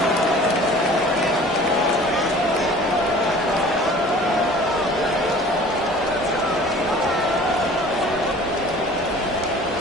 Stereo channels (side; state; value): both; normal; correlation 0.46